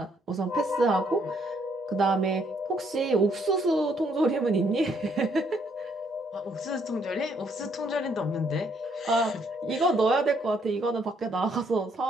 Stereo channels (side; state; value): both; normal; correlation 0.70